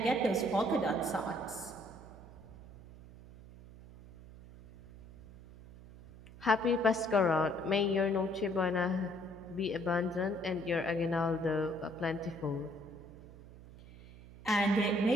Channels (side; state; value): right; noise; hum, 18 dB below the sound